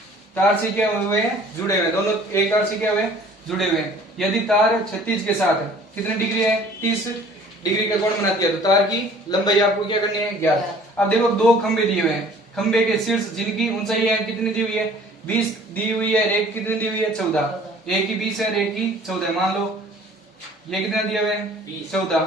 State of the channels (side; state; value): both; normal; correlation 0.52